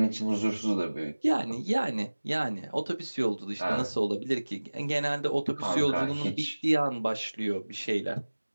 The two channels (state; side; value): inverted; both; correlation -1.00